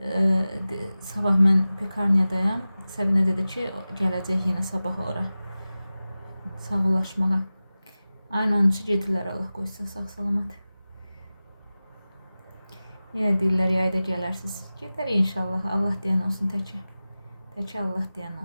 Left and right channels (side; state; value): both; inverted; correlation -0.96